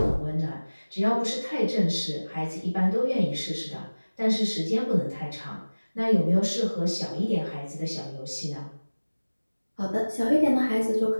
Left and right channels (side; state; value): both; inverted; correlation -1.00